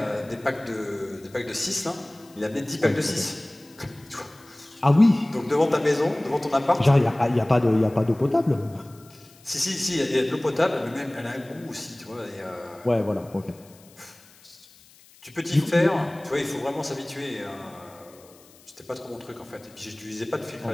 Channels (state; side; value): noise; left; hiss, 26 dB below the sound